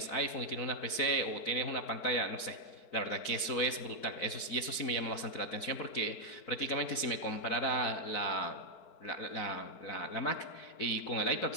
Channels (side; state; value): right; late; 4.6 ms